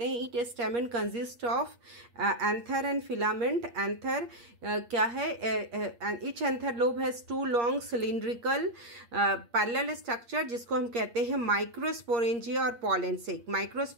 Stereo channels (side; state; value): left; late; 8.5 ms